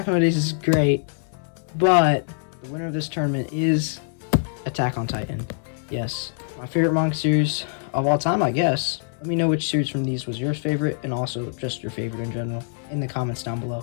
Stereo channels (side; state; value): right; silent; 61 dB below the other